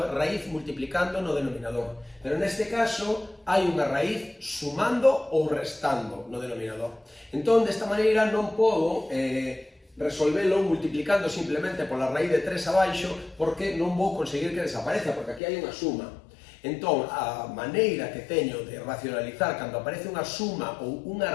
raíz multiplicando no denominador. Pero neste caso hai unha raíz sumando ou restando no denominador. Entón, desta maneira non podo resolvelo multiplicando simplemente pola raíz de 3 abaixo porque non vou conseguir que desapareza, porque aquí hai unha suma. Entón, a maneira que teño de racionalizar cando aparece unha suma ou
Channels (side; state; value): right; drops out; at 15.4 s